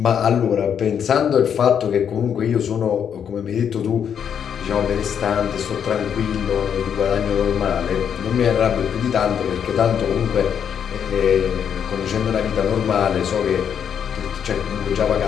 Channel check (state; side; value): quieter; right; 8.1 dB